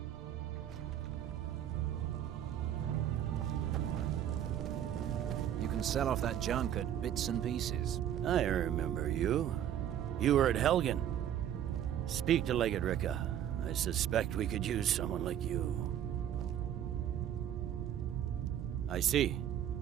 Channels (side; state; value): left; quieter; 10.4 dB